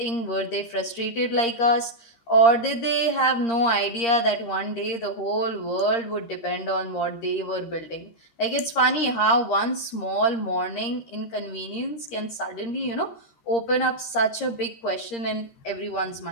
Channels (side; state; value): right; late; 13 ms